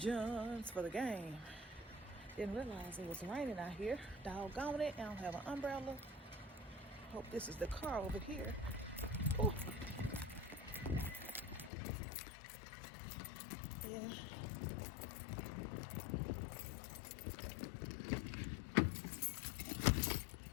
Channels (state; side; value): drops out; right; at 11.7 s